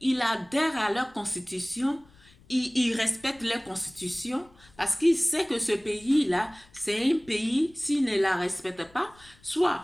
il adhère à leur constitution, il respecte leur constitution parce qu'il sait que ce pays-là, c'est un pays, s'il ne la respecte pas, soit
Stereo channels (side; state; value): left; noise; rumble, 28 dB below the sound